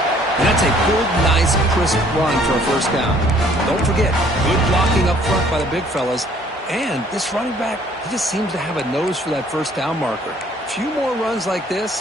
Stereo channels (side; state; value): both; normal; correlation 0.59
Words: That's a good, nice, crisp run for a first down. Don't forget, good blocking up front by the big fellas. And this running back, he just seems to have a nose for that first down marker. A few more runs like